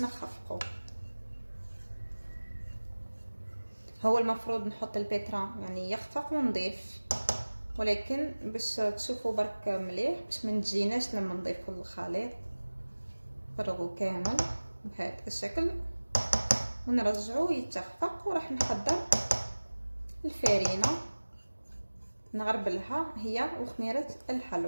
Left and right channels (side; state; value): both; inverted; correlation -1.00